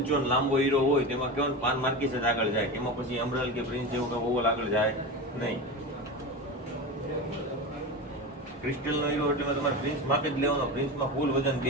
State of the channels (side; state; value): both; normal; correlation 0.24